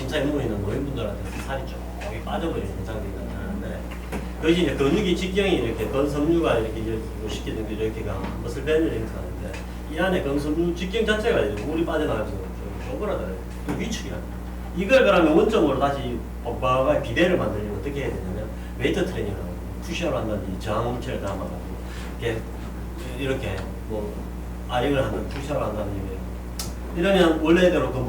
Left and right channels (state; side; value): identical; both; correlation 1.00